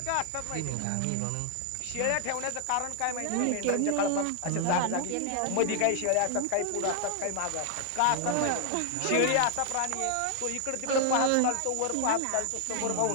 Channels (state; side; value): different; both; correlation 0.00